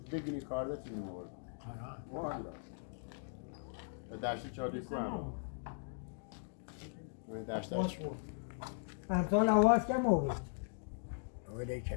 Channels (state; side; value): silent; right; digital silence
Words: دگنی کارده تیم آورد والا درسی چادی کنم من درستش امسال آواز کم آورد ولی چه